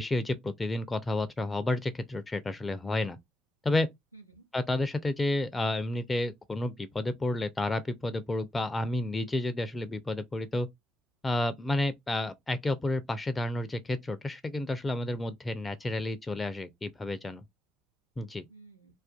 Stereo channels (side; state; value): both; normal; correlation 0.88